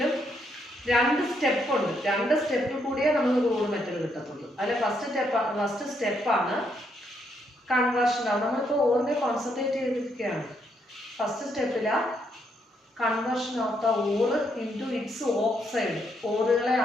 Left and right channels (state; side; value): normal; both; correlation 0.75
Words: 2 സ്റ്റെപ്പ് ഉണ്ട്. 2 സ്റ്റെപ്പിൽ കൂടിയേ നമുക്ക് ക്രൂഡ് മെറ്റൽ കിട്ടത്തുള്ളൂ. അതിൽ ഫസ്റ്റ് സ്റ്റെപ്പാണ് കൺവേർഷൻ. നമ്മളിപ്പോൾ ഓറിനെ കോൺസെൻട്രേറ്റ് ചെയ്തിരിക്കുകയാണ്. ഫസ്റ്റ് സ്റ്റെപ്പില് conversion of the ore into its oxide. ഓറുകളെ